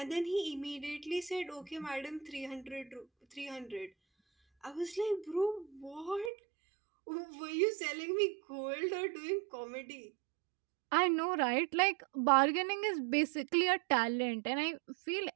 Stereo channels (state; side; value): drops out; left; at 6.3 s